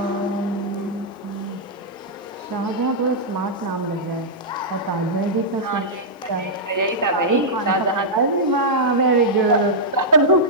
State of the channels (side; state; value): both; normal; correlation -0.09